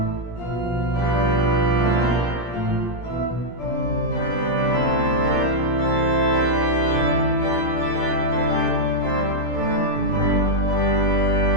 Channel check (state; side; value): late; right; 17 ms